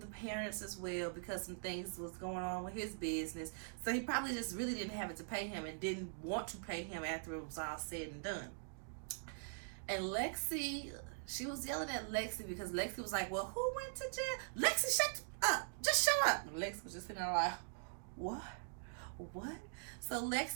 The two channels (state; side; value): silent; left; digital silence